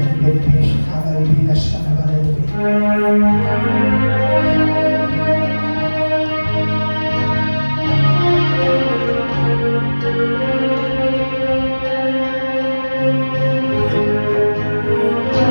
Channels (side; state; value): both; inverted; correlation -1.00